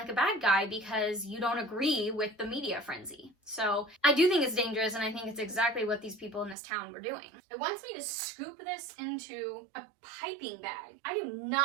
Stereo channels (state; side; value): drops out; left; at 6.6 s